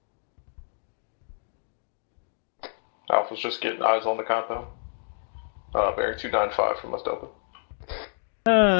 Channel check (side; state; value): right; silent; digital silence